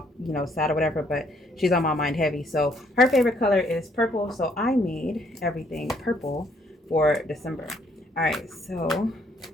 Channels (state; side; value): normal; both; correlation 0.67